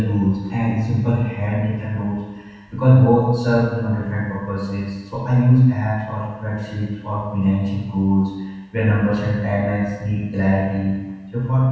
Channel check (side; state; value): both; identical; correlation 1.00